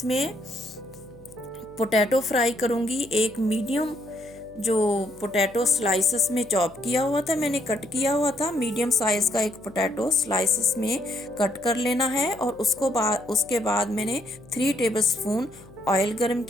पोटैटो फ्राई करूँगी। एक मीडियम जो पोटैटो स्लाइसेस में चॉप किया हुआ था, मैंने कट किया हुआ था, मीडियम साइज़ का एक पोटैटो स्लाइसेस में कट कर लेना है। और उसके बाद मैंने 3 टेबलस्पून ऑयल गरम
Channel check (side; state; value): left; noise; hum, 22 dB below the sound